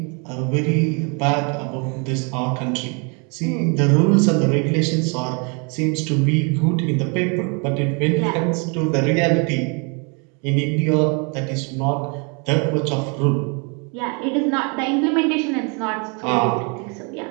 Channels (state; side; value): quieter; left; 34.3 dB